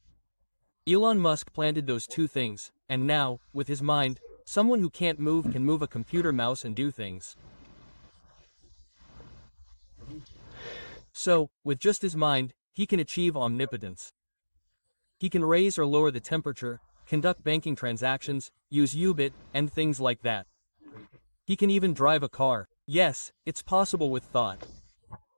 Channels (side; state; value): both; inverted; correlation -1.00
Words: Elon Musk planted those two things, and now, with his mind, someone who can't move can move a computer mouse and do things. So, with just his mind, he can achieve omnipotence. He can raise or lower the temperature, conduct banking transactions, use U-bit, and things like that. He can even drive a car. Yes, it's possible with thought.